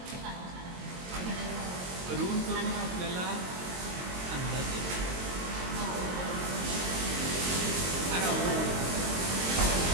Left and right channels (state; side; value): late; left; 22 ms